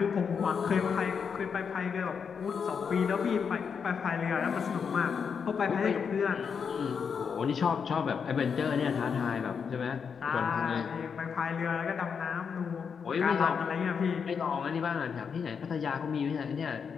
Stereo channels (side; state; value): right; quieter; 6.4 dB